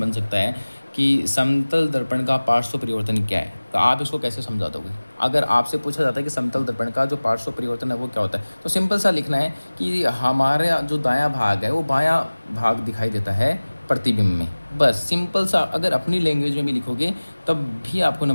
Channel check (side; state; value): both; inverted; correlation -1.00